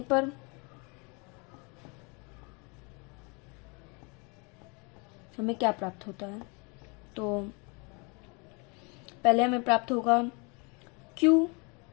पर हमें क्या प्राप्त होता है? तो पहले हमें प्राप्त होगा Q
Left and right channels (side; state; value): right; quieter; 31.3 dB